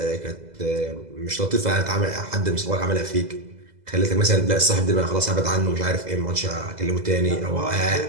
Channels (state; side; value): late; left; 2.0 ms